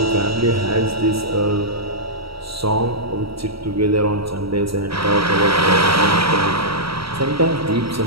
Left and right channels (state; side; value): late; left; 0.75 ms